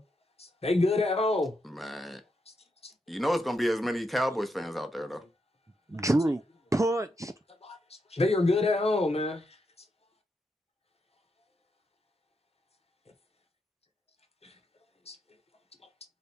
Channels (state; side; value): normal; both; correlation 0.83